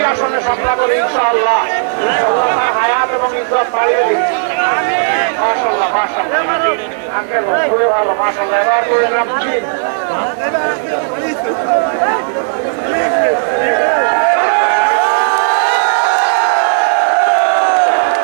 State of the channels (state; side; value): silent; left; digital silence